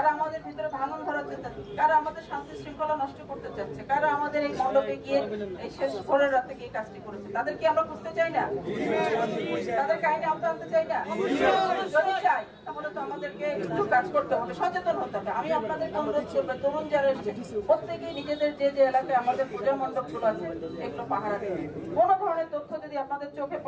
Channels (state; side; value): identical; both; correlation 1.00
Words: আমাদের ভিতরে ভাঙন ধরাতে চাচ্ছে, কারা আমাদের শান্তি শৃঙ্খলা নষ্ট করতে চাচ্ছে, কারা আমাদের এই মণ্ডপে গিয়ে এই শেষ ভোরের রাতে গিয়ে কাজটি করেছে, তাদেরকে আমরা বুঝতে চাই না, তাদের কাহিনী আমরা আনতে চাই না। যদি চাই তাহলে তো আমাদেরকে একটু কাজ করতে হবে, সচেতন হতে হবে। আমি আপনাদেরকে অনুরোধ করবো, তরুণ যারা এসছে প্রত্যেকেই নিজেদের যে যে এলাকায় আমাদের পূজা মণ্ডপগুলো আছে এগুলো পাহারা দেবেন। কোনো ধরনের তথ্য যদি আপনাদের চোখে